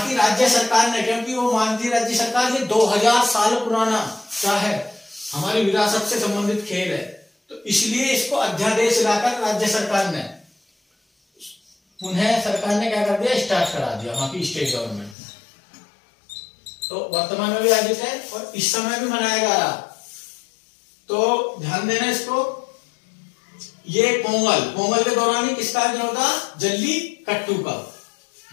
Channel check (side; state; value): right; drops out; at 15.2 s